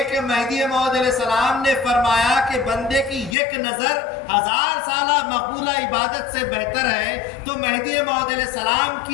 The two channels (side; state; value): right; drops out; at 3.4 s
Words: کہ مہدی موعود علیہ السلام نے فرمایا کہ بندے کی 1 نظر 1000 سالہ مقبولہ عبادت سے بہتر ہے، تو مہدی موعود علیہ السلام